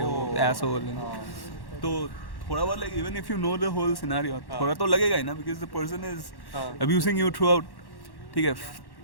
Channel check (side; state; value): right; late; 1.1 ms